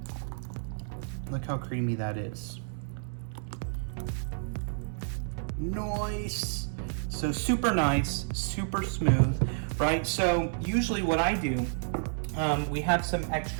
look how creamy that is. Nice. So super nice, super smooth, right? So usually what I do, we have some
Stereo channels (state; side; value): silent; left; 58 dB below the other